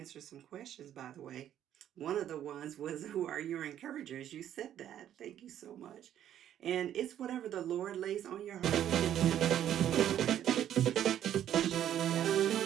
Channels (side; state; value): left; quieter; 10.8 dB